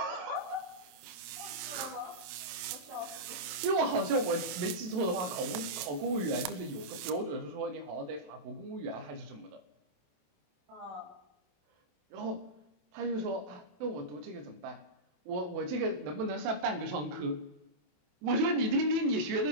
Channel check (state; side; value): late; left; 28 ms